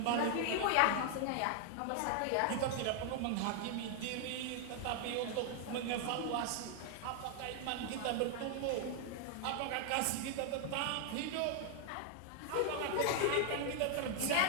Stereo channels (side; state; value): both; different; correlation 0.00